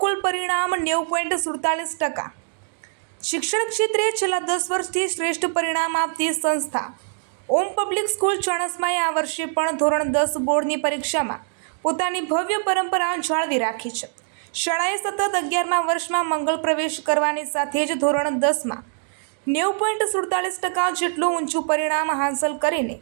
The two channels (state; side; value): silent; left; digital silence